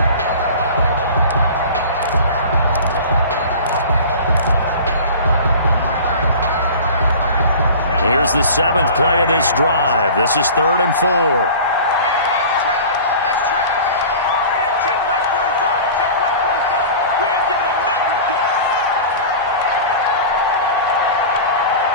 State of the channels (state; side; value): inverted; both; correlation -0.38